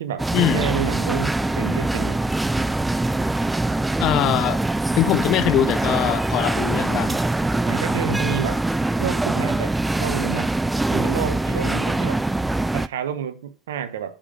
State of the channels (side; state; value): both; normal; correlation 0.69